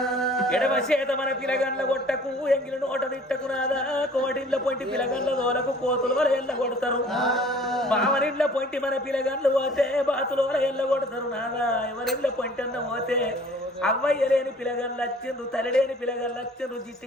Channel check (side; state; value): both; normal; correlation 0.51